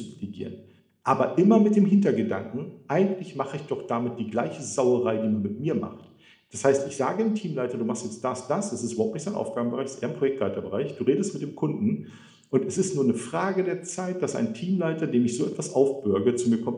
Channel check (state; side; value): identical; both; correlation 1.00